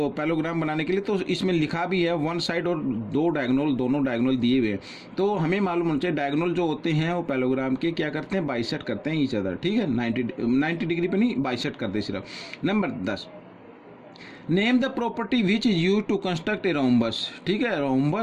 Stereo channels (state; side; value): identical; both; correlation 1.00